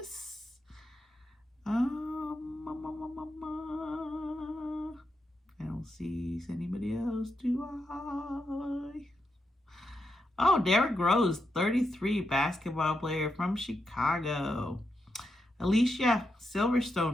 I don't see anybody else, do I? Oh, Derrick Rose, 33, basketball player from Chicago. Alicia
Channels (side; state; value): both; normal; correlation 0.84